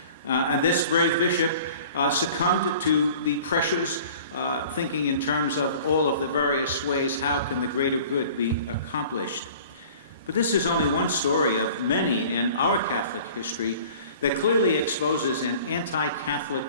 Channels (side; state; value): both; inverted; correlation -0.46